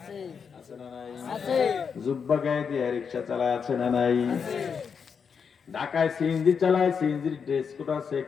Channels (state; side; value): quieter; right; 6.3 dB